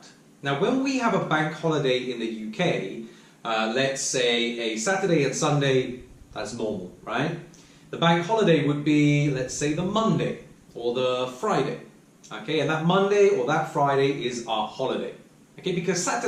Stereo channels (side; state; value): both; identical; correlation 1.00